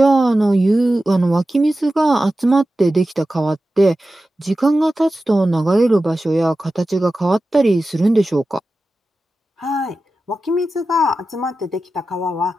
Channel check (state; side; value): normal; both; correlation 0.94